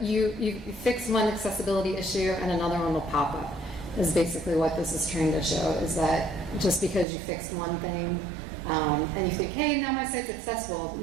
you fix one accessibility issue and another one will pop up. Is basically what this is trying to show, is that just because you fixed one thing and you think, hey, now my site's accessible,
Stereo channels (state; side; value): drops out; left; at 7.1 s